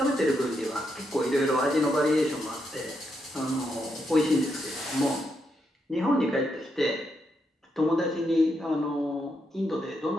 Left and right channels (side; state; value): both; normal; correlation 0.81